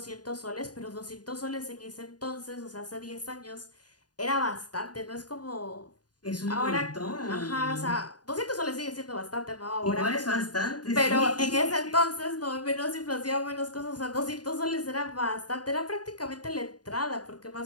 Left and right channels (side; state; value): right; late; 0.69 ms